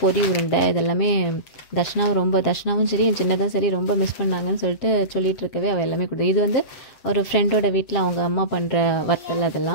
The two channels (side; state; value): right; late; 7.7 ms